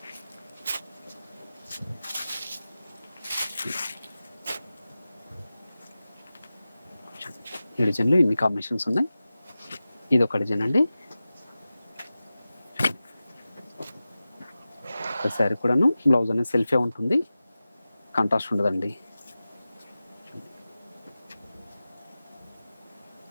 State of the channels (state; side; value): inverted; both; correlation -0.95